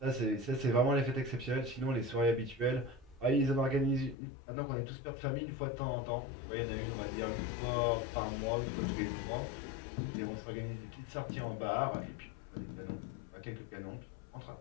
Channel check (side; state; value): right; drops out; at 4.2 s